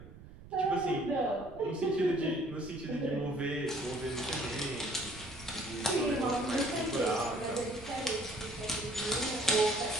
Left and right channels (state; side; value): noise; right; rumble, 17 dB below the sound